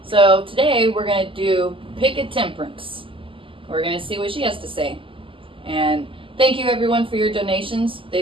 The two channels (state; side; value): late; left; 0.25 ms